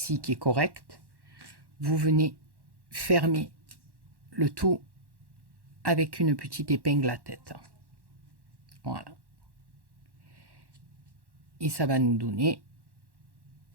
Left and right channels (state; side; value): late; left; 1.1 ms